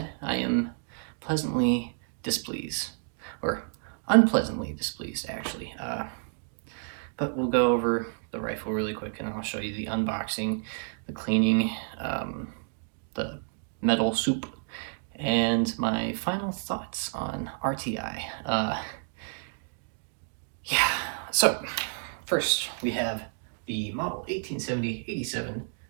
I am pleasantly displeased, or unpleasantly displeased actually. But we'll go over the rifle really quick and I'll show you the unboxing, the cleaning, the metal soup, and my final thoughts on RTI. Yeah, so first we have the model 1870-87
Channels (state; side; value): silent; left; 58 dB below the other